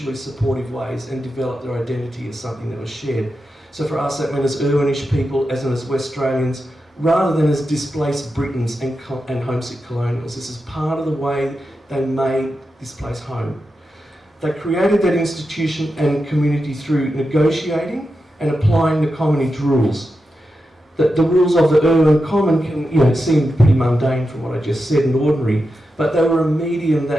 supportive ways and develop their identity as something that was shared. So for us that meant as Irwinish people, as in as West Australians, rather than as displaced Britons and homesick colonials. This is part of the way they made this place home. They created that institution and community through negotiating and applying the commonage rules. The rules of the Irwin Common can seem pretty mundane from what I just said and ordinary, but they were a medium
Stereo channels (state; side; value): normal; both; correlation 0.89